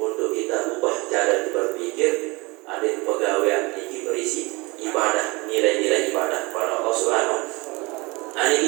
kita ubah cara berpikir. Ada pegawaian ini berisi ibadah, nilai-nilai ibadah kepada Allah Subhanahu. Ini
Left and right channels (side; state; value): left; quieter; 25.1 dB